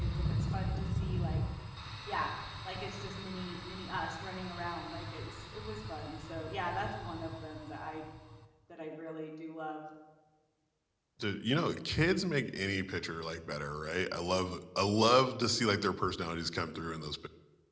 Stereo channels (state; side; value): identical; both; correlation 1.00